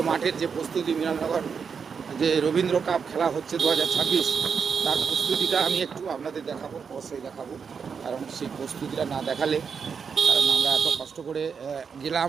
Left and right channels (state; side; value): quieter; left; 6.2 dB